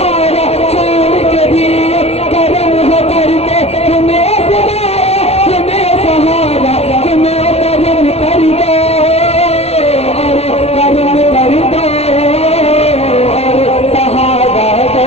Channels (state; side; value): late; right; 0.30 ms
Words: छोड़ के भी करम हो करके तुम्हें खुदाया, तुम्हें सहारा, तुम्हें करम कर दो और करम कर दो और सहारा दो।